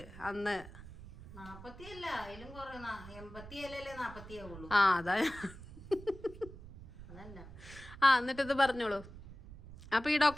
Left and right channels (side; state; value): right; noise; rumble, 15 dB below the sound